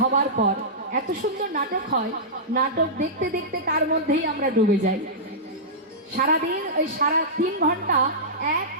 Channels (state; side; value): normal; both; correlation -0.15